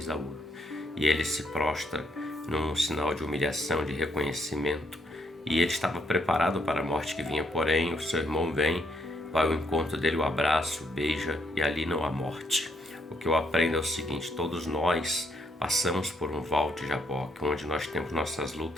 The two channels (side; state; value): both; normal; correlation 0.74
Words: E ele se prostra num sinal de humilhação, de reconhecimento. E ele estava preparado para a morte que vinha, porém o seu irmão vem, vai ao encontro dele, o abraça, o beija, e ali não há morte. O que eu aprendo é o seguinte: todos nós passamos por um val de Jaboque, onde nós temos nossas